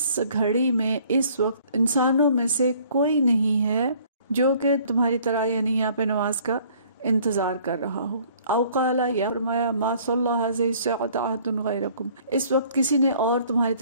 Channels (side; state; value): both; inverted; correlation -0.57